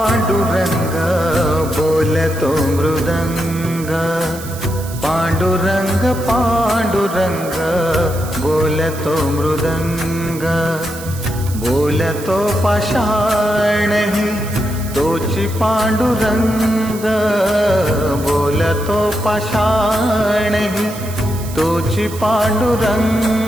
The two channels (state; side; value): noise; right; hiss, 14 dB below the sound